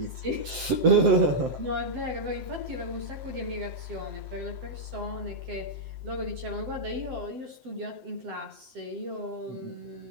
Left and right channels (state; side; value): late; left; 7.7 ms